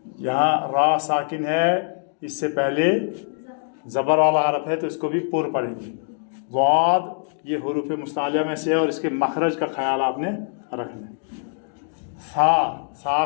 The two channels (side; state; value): right; silent; 63 dB below the other